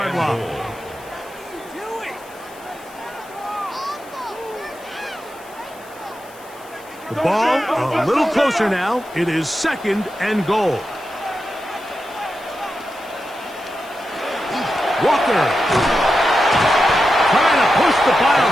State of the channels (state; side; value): noise; left; hiss, 23 dB below the sound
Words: line. The ball a little closer now. It is 2nd and goal. Walker trying to push the pile